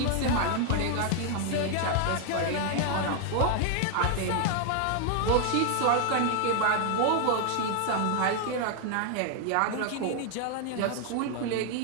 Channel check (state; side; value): different; both; correlation 0.00